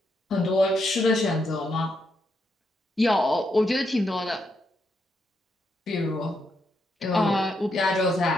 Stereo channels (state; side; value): normal; both; correlation 0.80